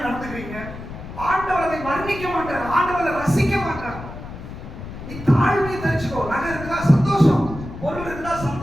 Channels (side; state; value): left; noise; rumble, 11 dB below the sound